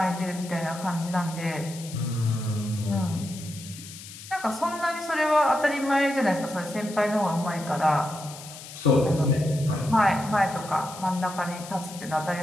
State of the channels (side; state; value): left; noise; hiss, 14 dB below the sound